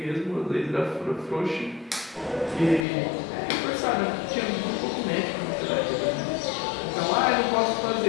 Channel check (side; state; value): right; drops out; at 2.9 s